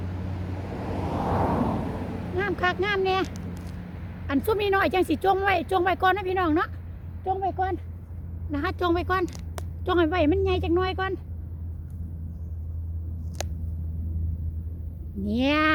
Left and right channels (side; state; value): both; identical; correlation 1.00